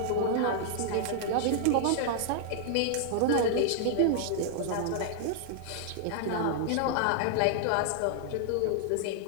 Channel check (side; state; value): both; different; correlation -0.01